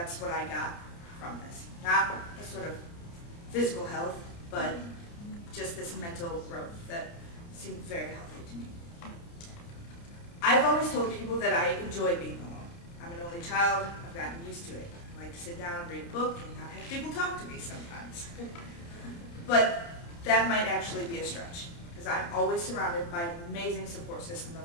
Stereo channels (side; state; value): right; late; 29 ms